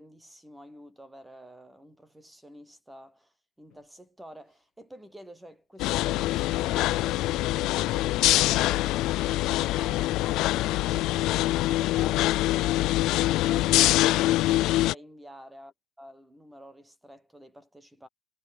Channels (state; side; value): quieter; right; 15.9 dB